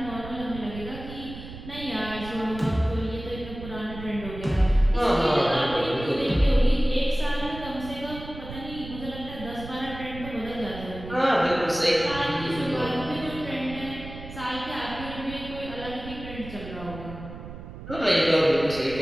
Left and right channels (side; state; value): right; noise; rumble, 12 dB below the sound